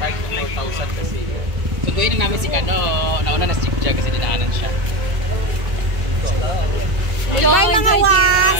to 4,000 kasi. Sunduin na namin si Kano. Nauna na si Jia kasi dinaanan siya. Goodbye mga was!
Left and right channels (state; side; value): late; left; 1.9 ms